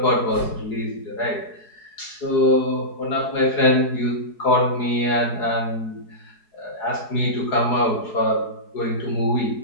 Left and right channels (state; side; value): late; right; 4.8 ms